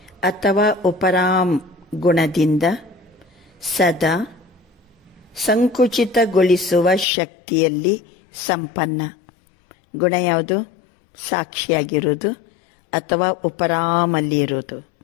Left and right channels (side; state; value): right; drops out; at 7.1 s